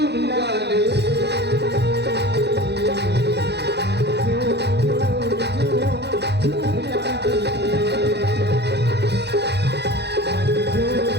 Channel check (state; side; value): late; left; 0.49 ms